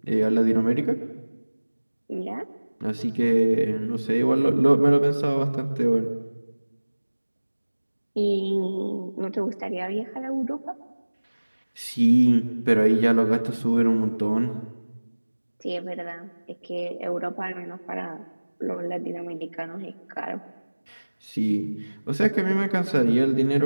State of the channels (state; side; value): inverted; both; correlation -1.00